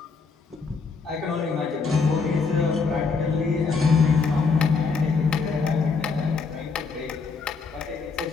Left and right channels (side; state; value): right; quieter; 4.8 dB